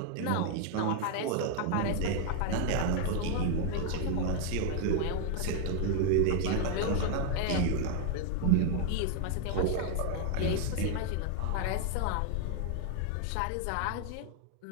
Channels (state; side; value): different; both; correlation 0.00